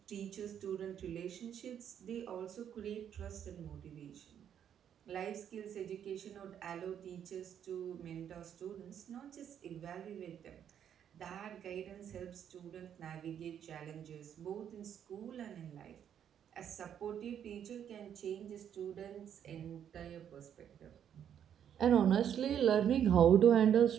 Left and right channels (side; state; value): left; quieter; 9.1 dB